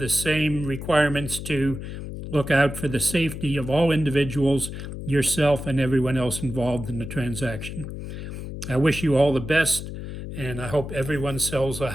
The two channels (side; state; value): left; noise; hum, 8 dB below the sound